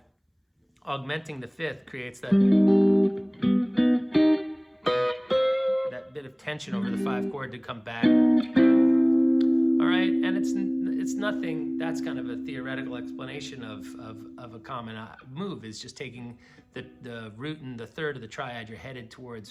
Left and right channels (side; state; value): both; identical; correlation 1.00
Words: augmenting the fifth, creates that bit of tension over the 5 chord to come back. All right, and it's nothing. That's kind of a theoretical explanation of a common move. Is just taking the root and the third of the triad. You're headed